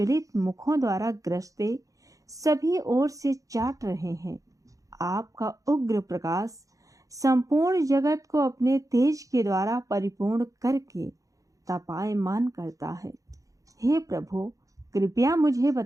मुखों द्वारा ग्रसते सभी ओर से चाट रहे हैं। आपका उग्र प्रकाश संपूर्ण जगत को अपने तेज के द्वारा परिपूर्ण करके तपायमान करता है। हे प्रभु, कृपया मुझे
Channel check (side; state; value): left; late; 0.16 ms